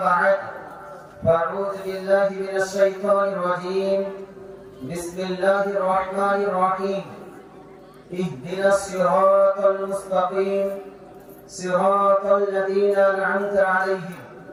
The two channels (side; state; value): both; identical; correlation 1.00